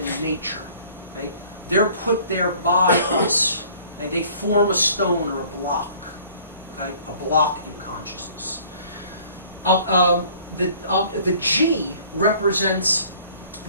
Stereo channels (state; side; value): inverted; both; correlation -0.53